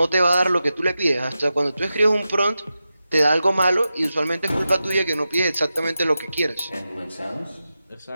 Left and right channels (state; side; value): inverted; both; correlation -0.91